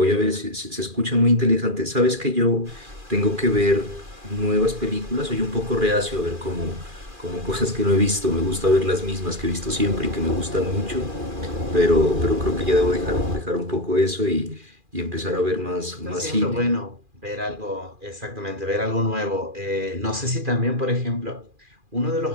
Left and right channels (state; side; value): late; left; 2.4 ms